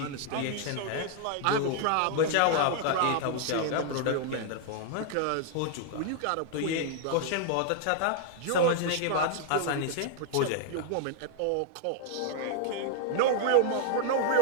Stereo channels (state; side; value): different; both; correlation 0.00